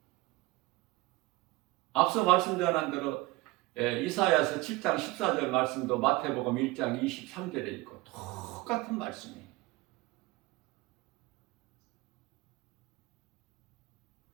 앞서 말씀 전한 대로 이사야서 7장 14절 말씀도 마태복음 1장 23절에 있고 똑같은 말씀이에요.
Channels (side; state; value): left; quieter; 20.7 dB